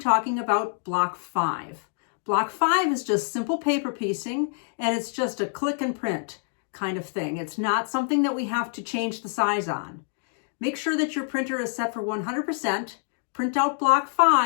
about block 5. Block 5 is just simple paper piecing, and it's just a click and print kind of thing. It's not something that we have to change the size on. Make sure that your printer is set for 100%. Print out block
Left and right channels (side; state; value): right; silent; 61 dB below the other